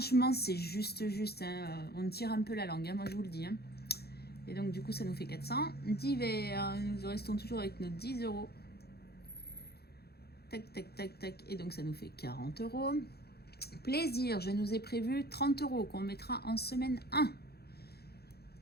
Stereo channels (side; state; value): right; late; 0.46 ms